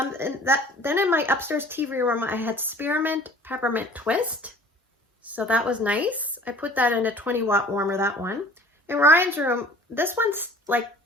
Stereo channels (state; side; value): normal; both; correlation 0.48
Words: in my upstairs TV room, I had Spearmint Peppermint Twist. So that was nice. I put that in a 20-watt warmer, that one. In Ryan's room, this